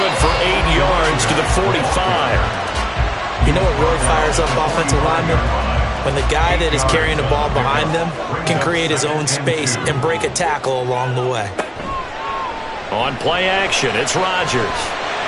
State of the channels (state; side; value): identical; both; correlation 1.00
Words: for 8 yards to the 45. You know what really fires up offensive linemen? When the guy that is carrying the ball behind them can create his own space and break a tackle along the way. On play action, it's Rodgers.